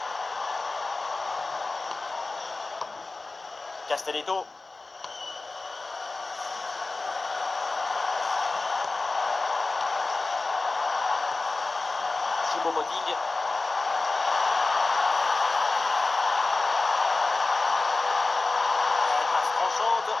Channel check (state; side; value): quieter; right; 3.5 dB